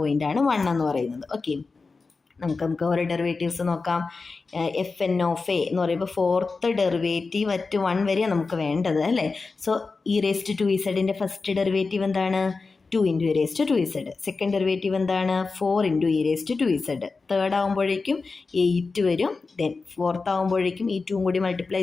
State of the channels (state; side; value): quieter; right; 4.2 dB